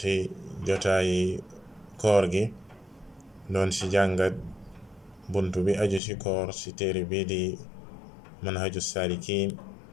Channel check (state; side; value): drops out; right; at 6.0 s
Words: jotaayi koor gi, doon si jàngat bunt bi aju si koor si téere bi di manhaju salikin